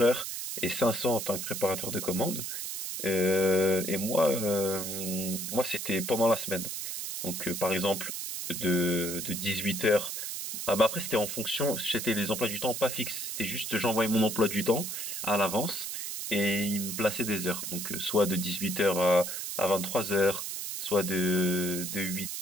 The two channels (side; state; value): right; noise; hiss, 5 dB below the sound